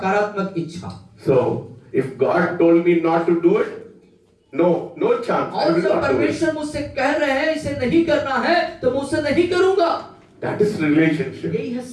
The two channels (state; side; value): identical; both; correlation 1.00